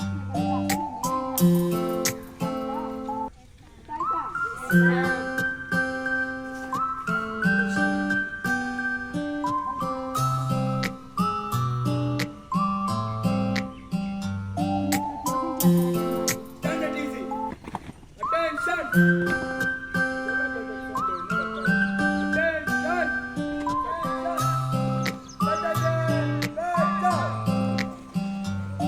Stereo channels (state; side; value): identical; both; correlation 1.00